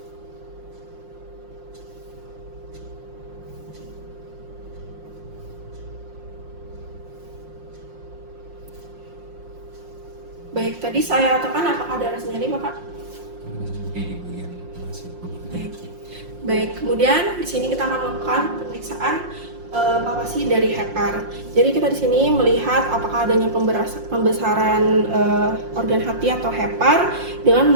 Baik, tadi saya tekan apakah ada rasa nyeri Bapak? Di bagian masuk. Baik, kemudian di sini kita akan melakukan pemeriksaan palpasi dari hepar. Jadi kita di sini melihat apakah adanya pembesaran organ hati atau hepar dengan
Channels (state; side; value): late; left; 5.6 ms